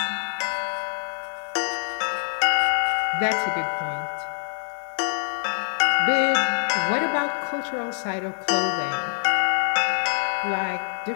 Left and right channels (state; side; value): silent; right; 62 dB below the other